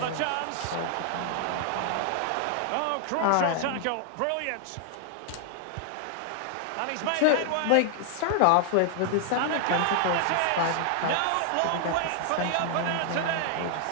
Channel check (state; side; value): different; both; correlation 0.00